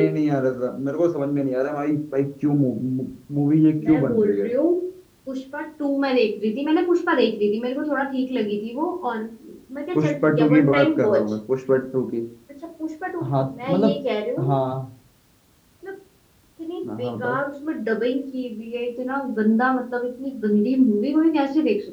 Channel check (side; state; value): both; identical; correlation 1.00